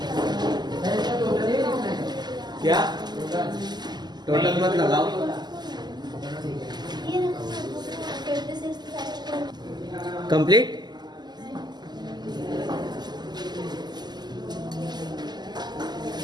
क्या टोटल मत लगाओ। कंप्लीट।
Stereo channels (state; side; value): late; left; 0.21 ms